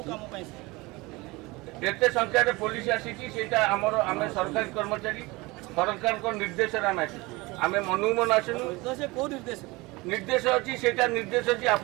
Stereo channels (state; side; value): quieter; left; 23.1 dB